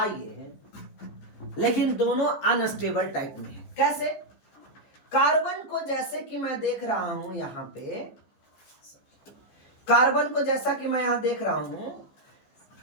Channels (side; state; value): right; late; 14 ms